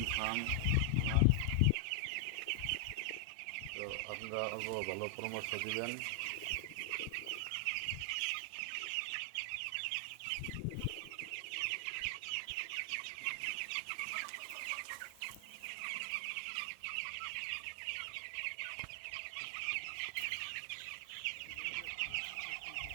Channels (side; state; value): both; different; correlation 0.00